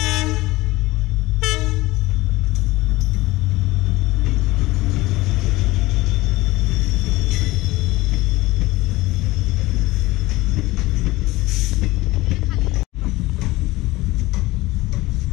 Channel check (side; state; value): right; quieter; 19.5 dB